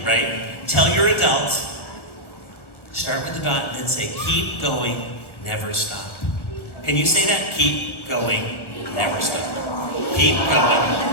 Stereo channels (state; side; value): late; right; 1.2 ms